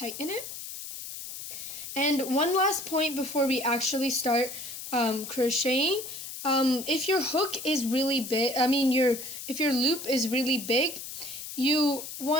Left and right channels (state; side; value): noise; left; hiss, 9 dB below the sound